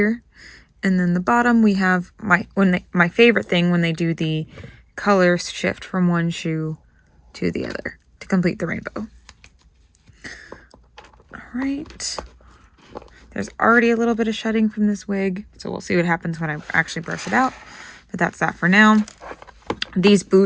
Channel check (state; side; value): identical; both; correlation 1.00